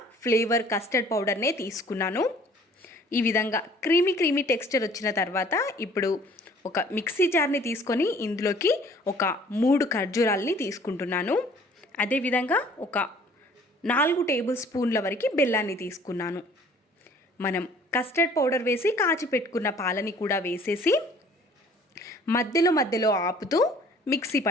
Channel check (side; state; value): both; normal; correlation 0.54